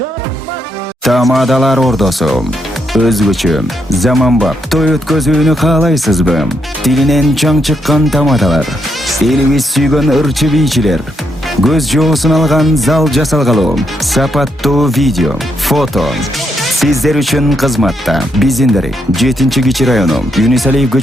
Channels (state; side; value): normal; both; correlation 0.79